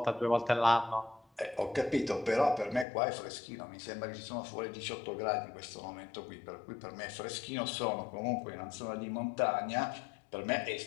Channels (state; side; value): drops out; right; at 2.9 s